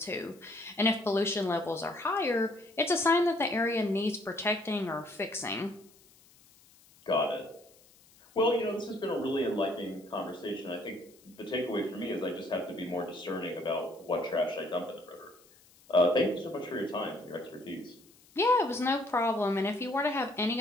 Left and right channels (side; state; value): left; noise; hiss, 28 dB below the sound